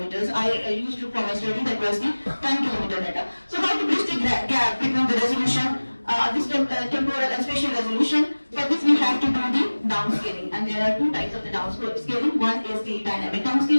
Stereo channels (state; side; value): inverted; both; correlation -1.00